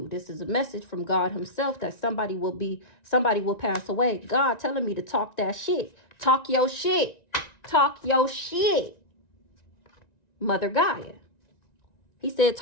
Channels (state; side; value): late; right; 1.9 ms